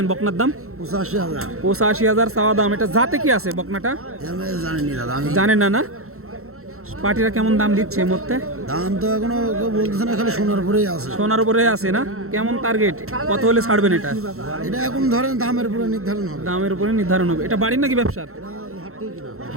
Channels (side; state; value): left; late; 0.63 ms